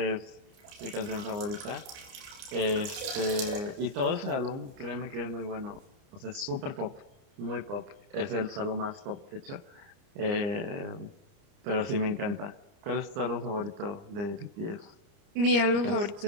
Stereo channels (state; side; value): late; left; 30 ms